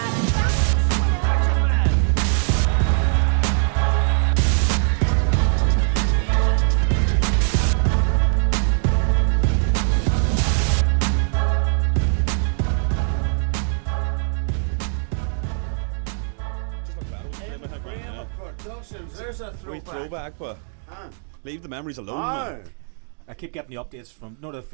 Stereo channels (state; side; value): silent; left; digital silence